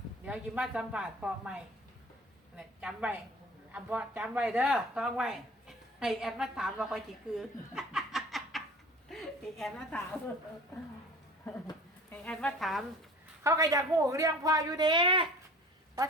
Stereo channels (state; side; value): normal; both; correlation 0.44